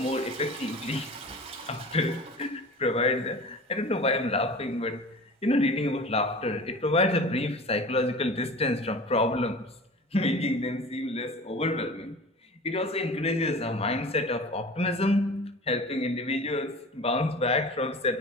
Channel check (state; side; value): normal; both; correlation 0.38